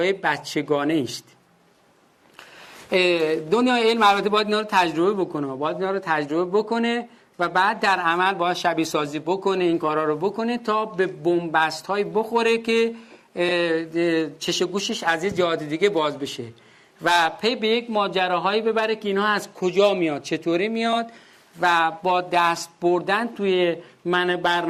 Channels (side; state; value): both; identical; correlation 1.00